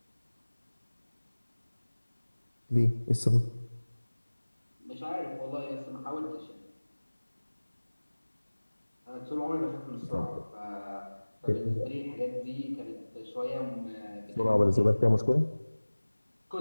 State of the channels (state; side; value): inverted; both; correlation -1.00